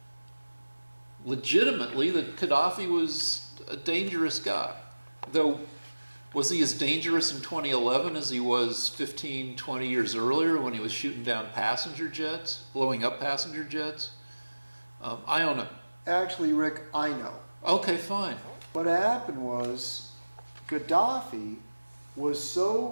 legitimately that Gaddafi was a dangerous guy. Though, was he as dangerous in 2011 as he was 15, 20 years earlier when he was shooting down passenger jets, blowing up passenger jets? I don't know. Actually, Rick, I know. Okay, fine. What happened was Gaddafi was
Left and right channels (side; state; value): both; inverted; correlation -1.00